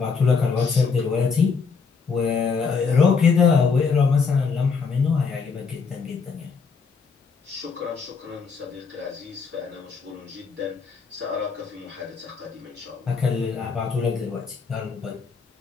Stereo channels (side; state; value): right; quieter; 5.3 dB